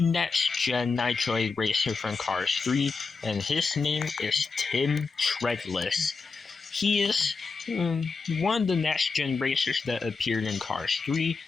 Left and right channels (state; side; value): quieter; right; 4.6 dB